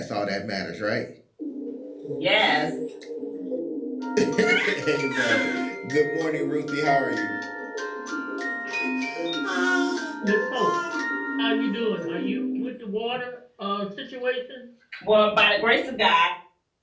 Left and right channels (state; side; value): identical; both; correlation 1.00